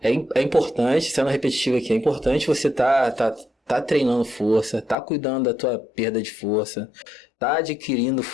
é importante, sendo repetitivo aqui, é importante você tá treinando força, tá cuidando da tua perda de força, tá adquirindo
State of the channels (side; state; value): right; drops out; at 5.0 s